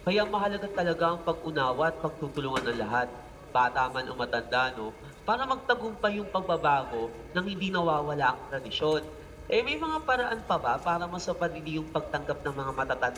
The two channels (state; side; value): identical; both; correlation 1.00